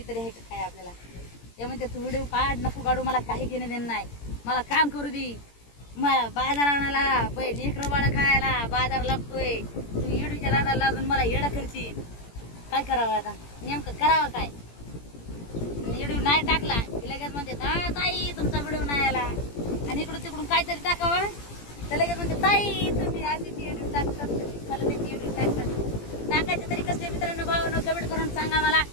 तरी आहे का काय आपल्याला? ते म्हणते तू व्हिडिओ काढ, नको काढू, मला काही घेणं देणं नाही. मला काम करू दे. मला बाजार आणायला, लेकरं बाळा खायला बाजार लागतोय. तू येडूच्या नादाला लागून मला येडा करची. काय करावं आता? नेमकं करावं काय? व्हिडिओ नाही टाकला की लगेच म्हणते ताई तुमचा व्हिडिओ नाही आला. आणि इकडून तिकडून काहीतरी टाकावं तर लगेच म्हणते ताई तुम्ही आधीच व्हिडिओ टाकतात, मला त्याची व्हिडिओ टाकतात. टाकायचे तरी कसले मित्रांनो, भावांनो, कमेंट करून सांगा मला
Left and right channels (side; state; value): right; late; 17 ms